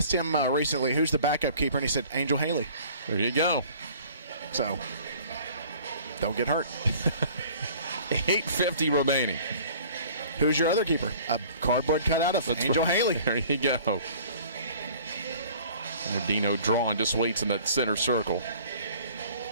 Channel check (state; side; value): inverted; both; correlation -0.50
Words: him recently, who's the backup keeper, and he said Angel Haley. There you go. So, don't get hurt. 8:50 remaining. Who's your other keeper? A cardboard cutout of Angel Haley. There you go. And Adino drawn, just waits in that center circle.